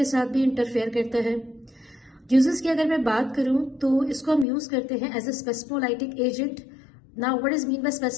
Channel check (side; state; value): right; drops out; at 4.5 s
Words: साथ भी इंटरफेयर करता है। यूजेस की अगर मैं बात करूं तो इसको हम यूज करते हैं as a spasmolytic agent. Now what is mean by